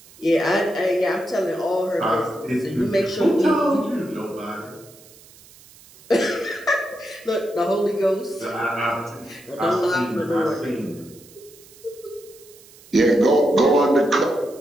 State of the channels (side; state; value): right; noise; hiss, 24 dB below the sound